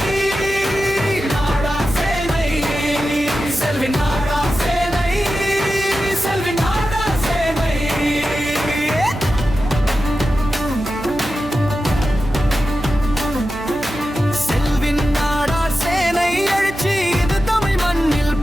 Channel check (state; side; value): noise; right; hum, 13 dB below the sound